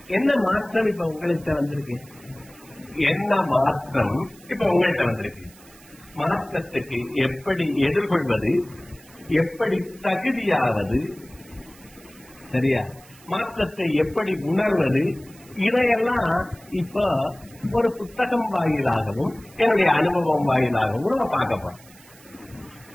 என்ன மாற்றம் இப்ப உங்கள்கிட்ட வந்திருக்கு? என்ன மாற்றம் இப்ப உங்கள்கிட்ட வந்திருக்கு? மாற்றத்துக்கு எப்படி எதிர்கொள்வது, எப்படி தகுதியாவது, சரியா? மாற்றத்தை எப்படி உணர்வது, இதையெல்லாம் இப்ப ஒரு புத்தகம் வாயிலாகவும் என்னுடைய அனுபவம் வாயிலாகவும் நம்ம பார்க்க போறோம்.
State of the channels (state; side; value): noise; right; hiss, 24 dB below the sound